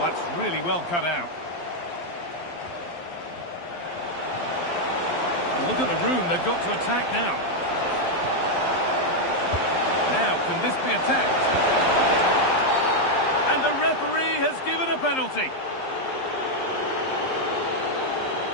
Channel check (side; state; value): right; late; 12 ms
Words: really well cut out. Look at the room they've got to attack now. Now, can this be attacked? And the referee has given a penalty.